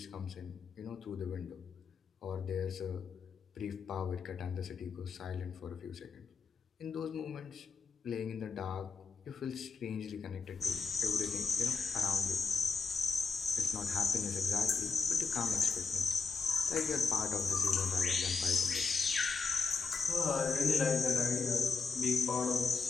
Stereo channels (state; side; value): quieter; right; 4.9 dB